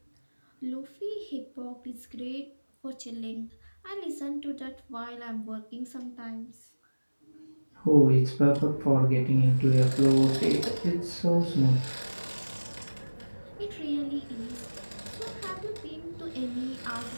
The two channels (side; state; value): both; inverted; correlation -1.00